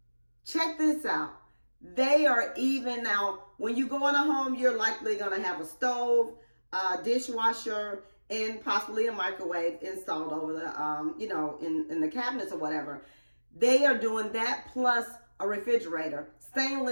check this out. They are even now, when you go in a home, you're likely going to have a stove, a dishwasher, and possibly a microwave installed over the, in the cabinets or whatever. They are doing that plus a refrigerator,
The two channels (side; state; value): both; inverted; correlation -1.00